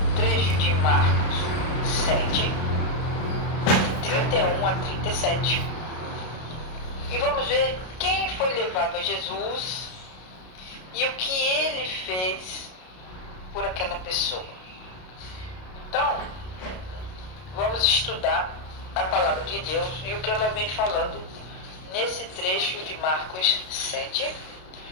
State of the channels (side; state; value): right; late; 32 ms